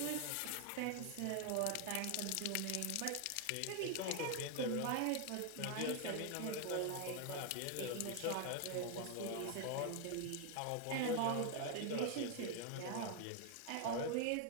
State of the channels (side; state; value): both; different; correlation 0.01